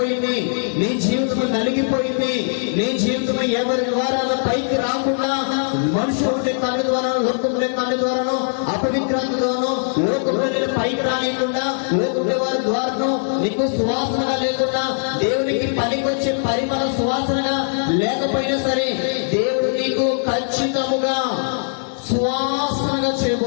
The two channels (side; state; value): right; silent; digital silence